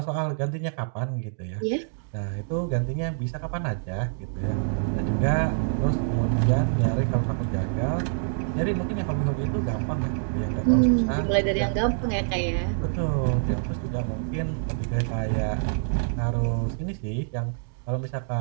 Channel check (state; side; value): silent; left; digital silence